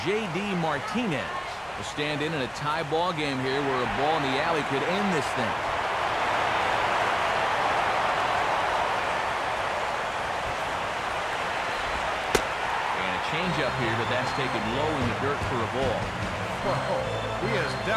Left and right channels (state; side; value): identical; both; correlation 1.00